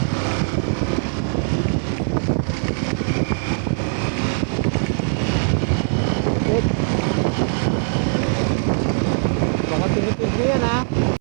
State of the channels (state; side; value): silent; left; 56 dB below the other